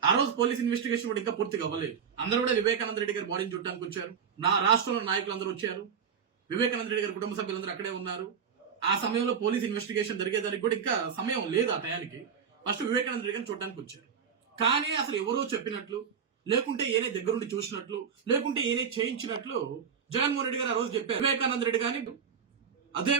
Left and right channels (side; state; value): left; quieter; 7.1 dB